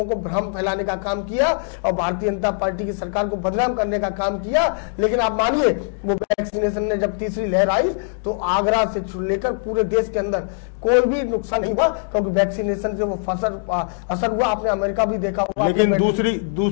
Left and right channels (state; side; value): silent; right; 65 dB below the other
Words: को भ्रम फैलाने का काम किया और भारतीय जनता पार्टी की सरकार को बदनाम करने का काम किया। लेकिन आप मानिए वो वैक्सीनेशन ने जब तीसरी लहर आई तो आगरा से लेकर पूरे देश के अंदर कोई भी नुकसान नहीं हुआ, क्योंकि वैक्सीनेशन से वो असर हुआ। आपने अमेरिका भी देखा हुआ। लेकिन